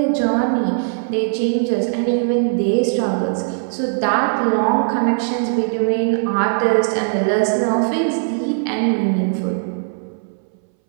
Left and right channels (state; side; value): silent; left; 63 dB below the other